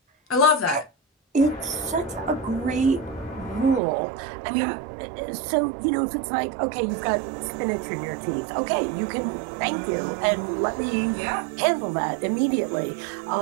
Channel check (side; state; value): left; drops out; at 3.8 s